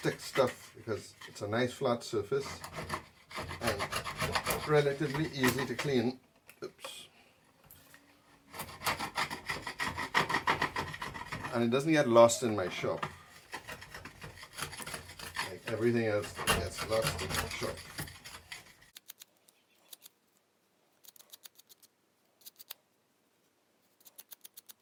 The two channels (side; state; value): both; identical; correlation 1.00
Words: stuff because it's a nice flat surface and relatively easy to clean. Oops. And it doesn't get lost in my shop like everything else that gets lost in my shop.